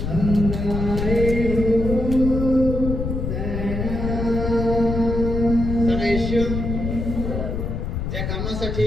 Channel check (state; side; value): noise; left; rumble, 3 dB below the sound